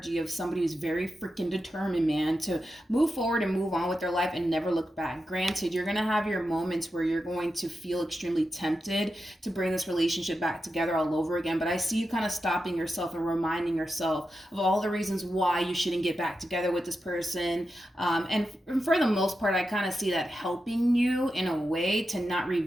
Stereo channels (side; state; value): both; normal; correlation 0.89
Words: of somebody who's very freaking determined, man, to move forward and move on with their life and never look back. Granted, you're going to have your moments where you're going to feel extremely tempted to bring this relationship back together all over again, but I see you kind of stopping yourself and reminding yourself of all the reasons why you shouldn't get back together with this person, and for the most part, I kind of see that helping you in a way to not